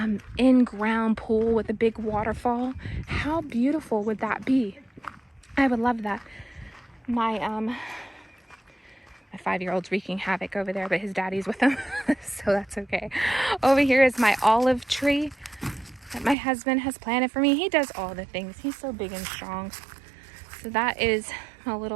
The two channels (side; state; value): left; drops out; at 16.4 s